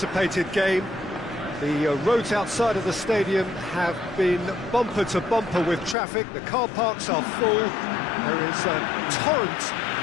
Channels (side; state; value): right; drops out; at 6.0 s